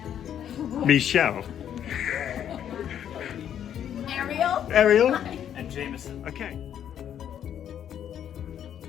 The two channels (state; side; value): quieter; right; 9.7 dB